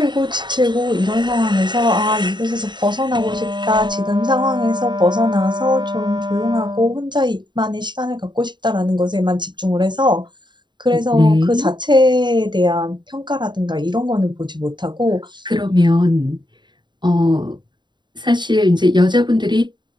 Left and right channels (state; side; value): late; left; 0.22 ms